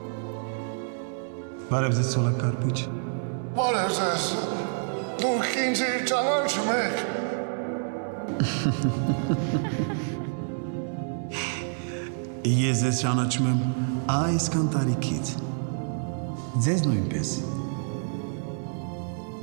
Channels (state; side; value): silent; left; digital silence